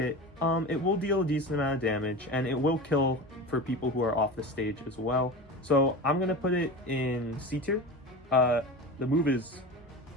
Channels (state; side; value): normal; both; correlation 0.29